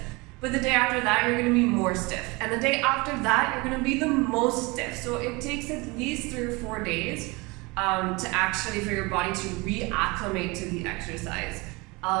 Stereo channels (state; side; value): quieter; left; 25.4 dB